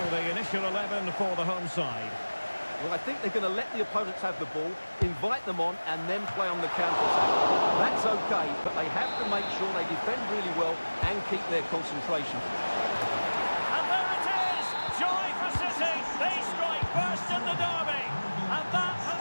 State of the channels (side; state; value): both; inverted; correlation -1.00